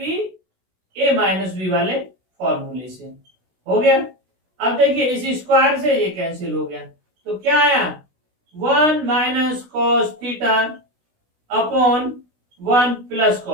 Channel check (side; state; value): left; late; 16 ms